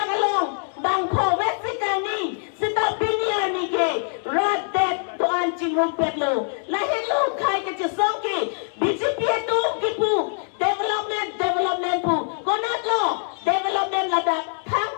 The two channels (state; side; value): silent; right; 62 dB below the other